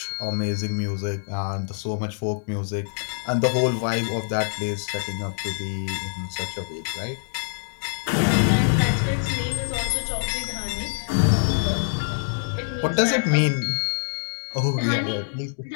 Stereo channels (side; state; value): right; silent; digital silence